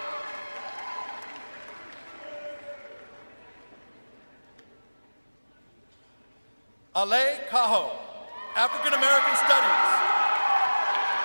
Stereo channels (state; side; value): inverted; both; correlation -1.00